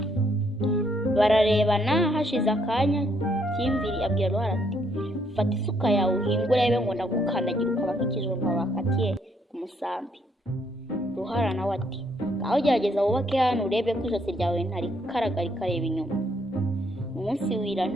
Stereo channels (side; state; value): both; normal; correlation 0.71